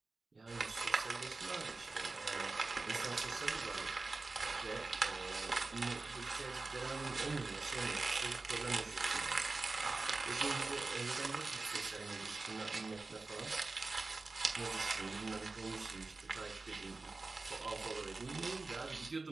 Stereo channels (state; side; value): quieter; left; 3.6 dB